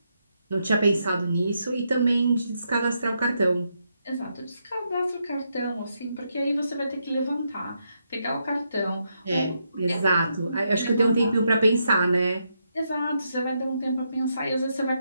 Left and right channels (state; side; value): inverted; both; correlation -0.81